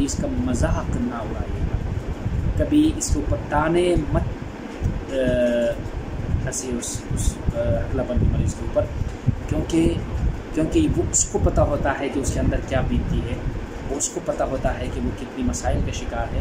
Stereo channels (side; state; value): both; identical; correlation 1.00